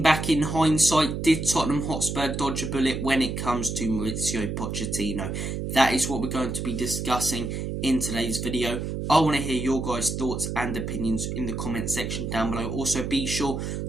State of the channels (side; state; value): right; noise; hum, 4 dB below the sound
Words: back in hindsight, did Tottenham Hotspur dodge a bullet when it comes to Mauricio Pochettino? That is what we're going to be discussing in today's video. I want to hear your guys' thoughts and opinions in the comment section down below. Also, be sure